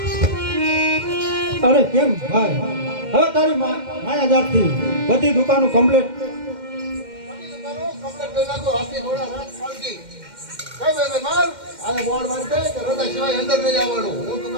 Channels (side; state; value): left; late; 2.1 ms